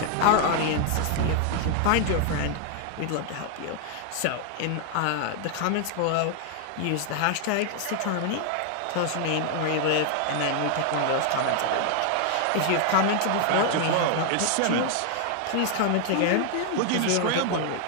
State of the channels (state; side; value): different; both; correlation 0.00